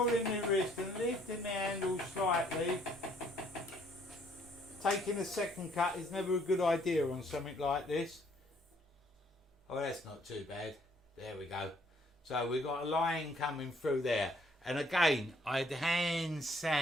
my wrist and lifting my handle slightly. Taking a second cut is never a good idea on something like this. Oh, that's not too bad. There we go. So we've got a line coming through there. And again, I'd hand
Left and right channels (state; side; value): normal; both; correlation 0.65